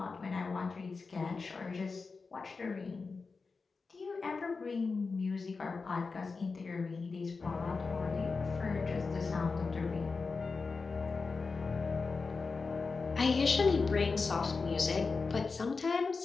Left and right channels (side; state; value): right; quieter; 4.4 dB